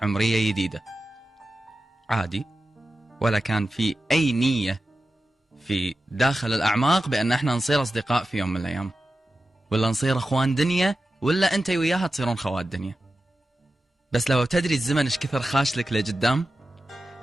عمرية جديدة عادي، ولا كان في اي نية في داخل الاعماق بان احنا نصير اصدقاء في يوم من الايام، ولا نصير اخوان دنيا، ولا انت وياها تصيرون خوات دنيا. بس لو تدري الزمن ايش كثر خاش لك لقدام،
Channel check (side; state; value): both; normal; correlation 0.93